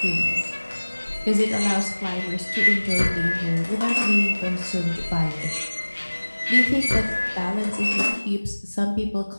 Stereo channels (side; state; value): both; inverted; correlation -1.00